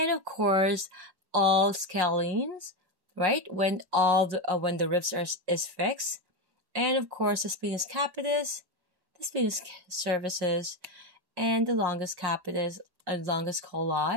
of course all scalenes, right? When when the ribs is fixed, and of course the splenius capitis, the splenius cervicis, and the longus capitis and longus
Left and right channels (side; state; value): left; late; 1.1 ms